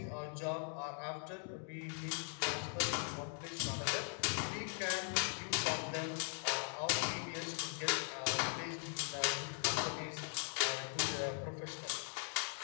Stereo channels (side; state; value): right; silent; 51 dB below the other